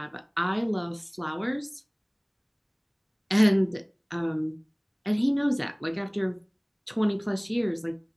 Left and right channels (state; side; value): identical; both; correlation 1.00